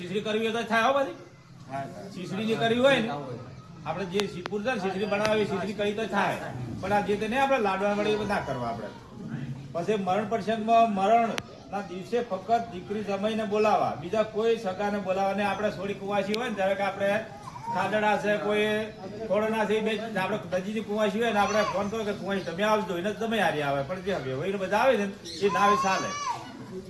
કરવી હોય તો થાય. હો બધી શીશડી જે કરવી હોય ને, આપણે જે શીપુર છે ને શીશડી બનાવી શીશડી કરી તો થાય, પણ આ જે તે નહીં આપણે લાડવા વડે ના કરવા. આપણે પછી મરણ પ્રસંગમાં મરણ ના દિવસે ફક્ત દીકરી જમાઈને બોલાવા, બીજા કોઈ સગાને બોલાવા નહીં. આપણે થોડી કુવાસી હોય ને, ધારો કે આપણે ખાડડા છે, કોઈ કોરોના છે, આપણે નજીકની કુવાસી હોય ને, આપણે ફોન કરો કે કુવાસી તમે આવજો, એને તમે હારી આવે. પણ જે હવે બધા આવે છે ને એ ના આવે ચાલે.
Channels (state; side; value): identical; both; correlation 1.00